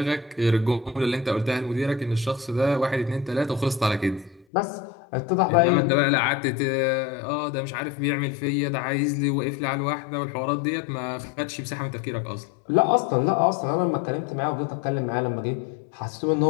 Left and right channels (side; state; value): right; drops out; at 4.5 s